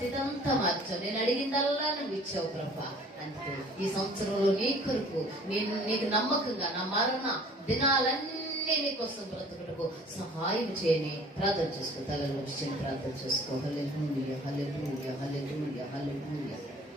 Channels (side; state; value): both; normal; correlation 0.51